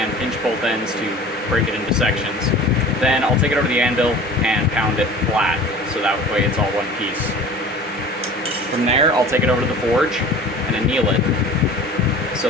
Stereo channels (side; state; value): both; normal; correlation 0.41